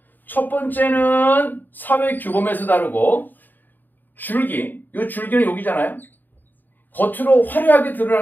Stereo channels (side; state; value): right; late; 0.089 ms